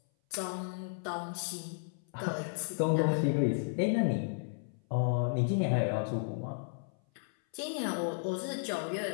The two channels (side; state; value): right; silent; 55 dB below the other